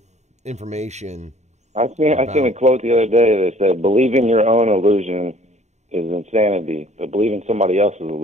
information. I seen a quote the other day that said, "Believing your own illusion is insanity, but believing somebody else's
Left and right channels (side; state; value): left; late; 0.33 ms